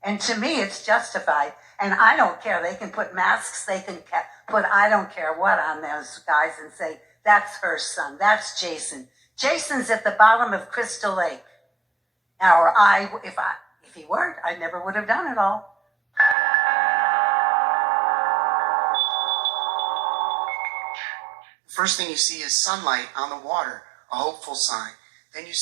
And to me, it's justified. And I don't care. They can put masks, they can put I don't care what on those guys and say, "That's her son, that's Jason. Jason's at the bottom of Crystal Lake." Or if he weren't, I never would have done it all. First thing you see is sunlight on the water, a hopeful sign. Then you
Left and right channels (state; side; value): drops out; left; at 16.4 s